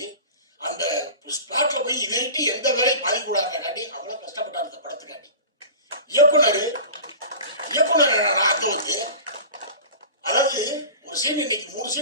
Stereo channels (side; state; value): both; inverted; correlation -0.36